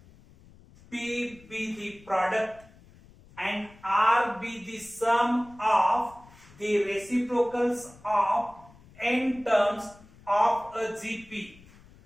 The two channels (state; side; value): noise; left; rumble, 24 dB below the sound